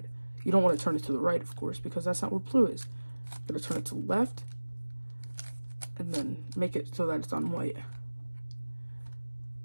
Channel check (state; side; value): inverted; both; correlation -1.00